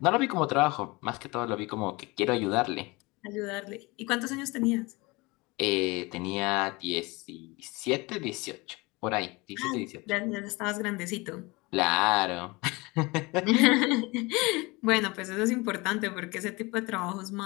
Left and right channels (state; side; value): quieter; right; 24.5 dB